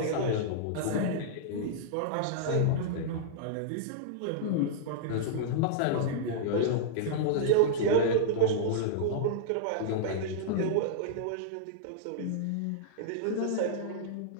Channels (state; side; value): different; both; correlation -0.02